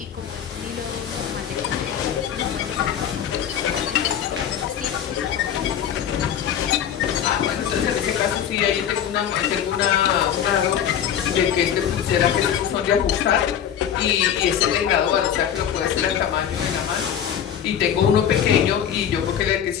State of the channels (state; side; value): quieter; right; 9.2 dB